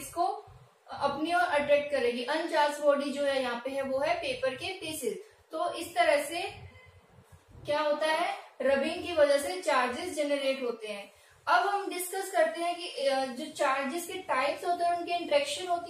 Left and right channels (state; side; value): identical; both; correlation 1.00